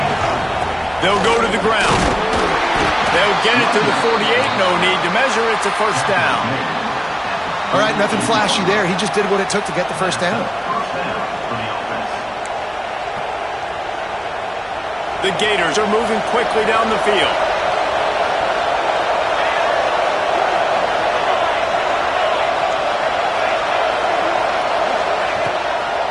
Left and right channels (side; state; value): both; identical; correlation 1.00